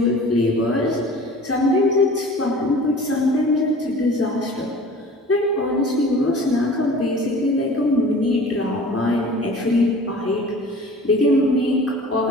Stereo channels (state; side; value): normal; both; correlation 0.43